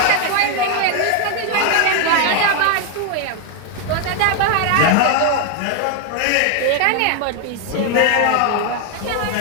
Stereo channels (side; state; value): both; different; correlation 0.00